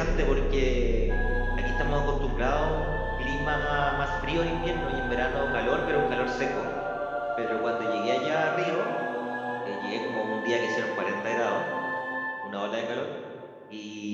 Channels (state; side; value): identical; both; correlation 1.00